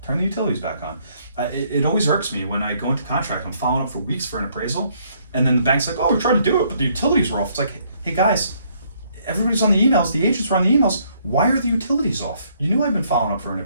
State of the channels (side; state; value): both; inverted; correlation -0.68